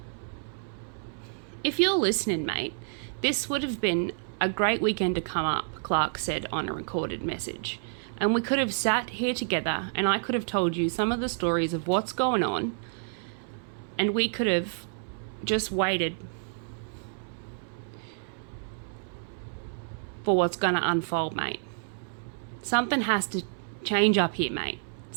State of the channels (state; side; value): silent; left; 58 dB below the other